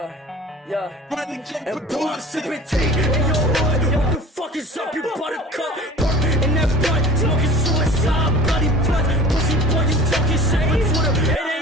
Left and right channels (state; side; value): normal; both; correlation 0.43